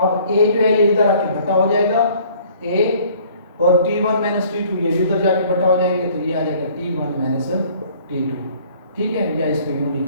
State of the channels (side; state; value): both; inverted; correlation -0.55